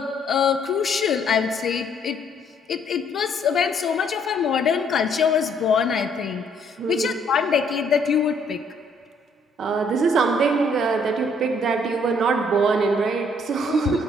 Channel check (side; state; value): both; normal; correlation 0.65